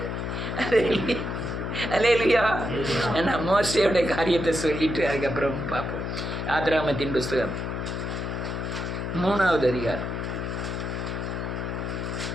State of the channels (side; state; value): left; noise; hum, 3 dB below the sound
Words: அல்லேலூயா. நான் மோசேயோட காரியத்தை சொல்லிட்டு அதுக்கப்புறம் பார்ப்போம். ஆதிராகமத்தின் புஸ்தகம் 3வது அதிகாரம்.